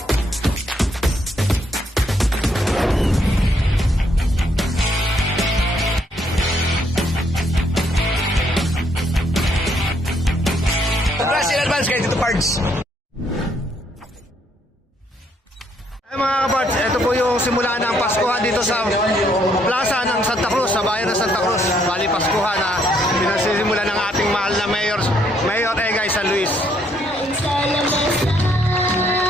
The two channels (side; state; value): both; normal; correlation 0.71